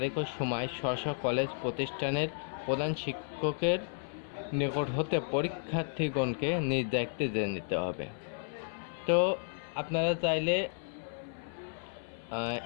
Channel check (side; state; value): right; silent; 56 dB below the other